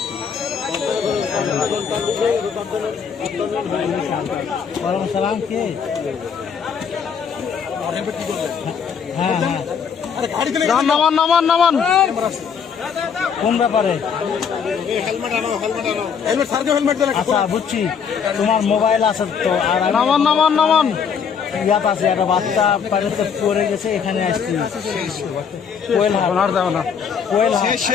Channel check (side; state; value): right; quieter; 6.9 dB